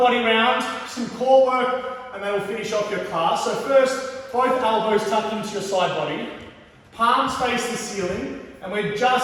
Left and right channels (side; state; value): both; identical; correlation 1.00